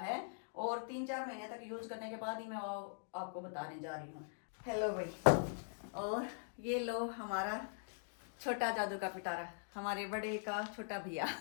और 3-4 महीने तक यूज करने के बाद ही मैं आपको बताने जा रही हूँ। हेलो भाई, और ये लो हमारा छोटा जादू का पिटारा, हमारे बड़े का छोटा भैया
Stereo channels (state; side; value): silent; right; digital silence